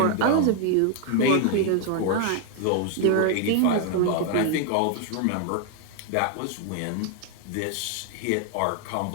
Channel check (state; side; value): different; both; correlation 0.00